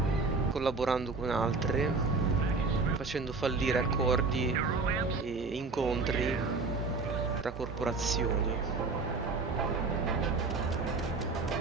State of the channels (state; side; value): quieter; left; 4.0 dB